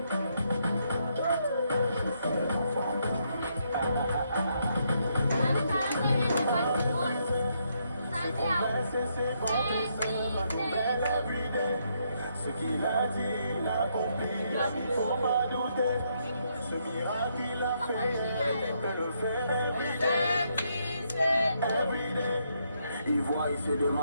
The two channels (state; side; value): inverted; both; correlation -0.76